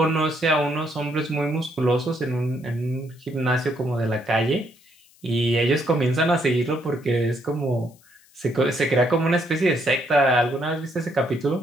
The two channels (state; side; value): noise; left; hiss, 29 dB below the sound